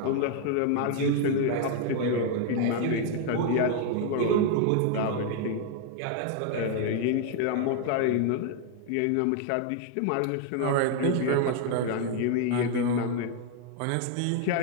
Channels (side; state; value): both; different; correlation 0.00